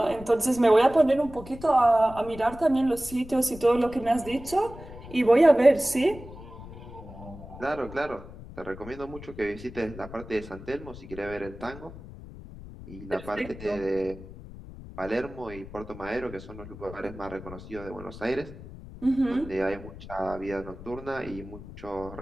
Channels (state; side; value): noise; left; rumble, 15 dB below the sound